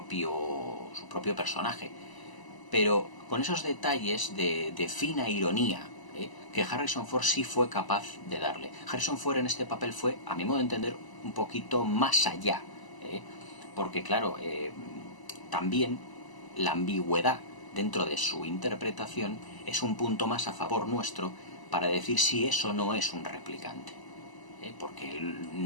personaje, pero con esos detalles de fina ironía que Harrison Ford sí fue capaz de darle. Harrison Ford en este papel fue, a mi modo de entender, un poquito más allá, porque claro, también la ambigüedad dentro de su interpretación es un punto más a favor nuestro para decir si eso no es un replicante, porque él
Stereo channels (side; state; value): right; late; 1.0 ms